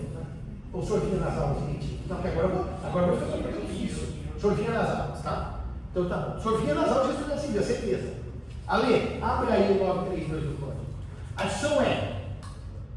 né? Ou o senhor vinha nas aulas, gente? Não, porque agora eu vou fazer uma pergunta difícil. O senhor vinha nas aulas, tá? Então tá bom. O senhor vinha nas aulas de responsabilidade civil, certeza. Ale, abre aí o 932 do código. A discussão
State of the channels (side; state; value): both; identical; correlation 1.00